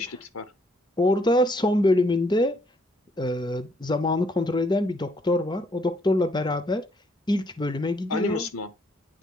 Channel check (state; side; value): normal; both; correlation 0.69